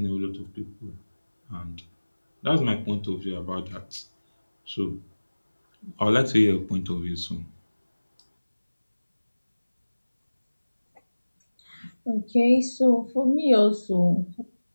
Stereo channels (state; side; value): inverted; both; correlation -1.00